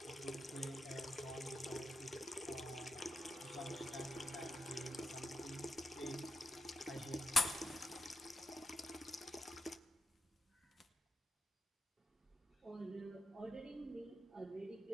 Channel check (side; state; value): both; normal; correlation 0.87